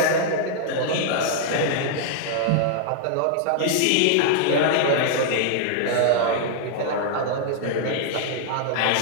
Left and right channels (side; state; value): both; different; correlation -0.01